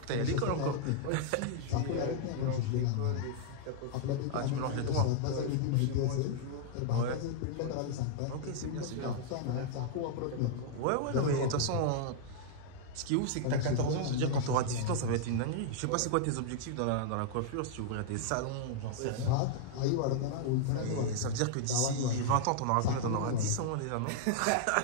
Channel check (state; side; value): different; both; correlation -0.01